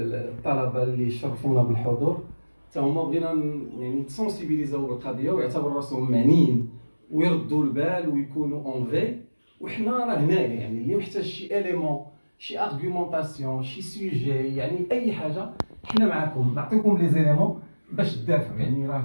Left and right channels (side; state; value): both; inverted; correlation -1.00